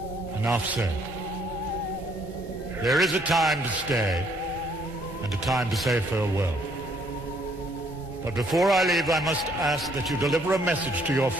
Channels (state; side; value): normal; both; correlation 0.66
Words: Enough said. There is a time to stay, and a time to say farewell. But before I leave, I must ask that you deliver a message to your